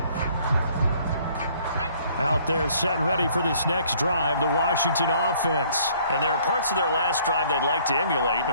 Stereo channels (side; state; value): both; inverted; correlation -0.59